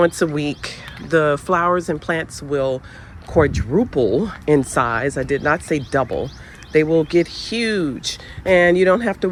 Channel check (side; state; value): both; identical; correlation 1.00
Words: a week. The flowers and plants will quadruple in size. I did not say double. They will get huge, and you don't have to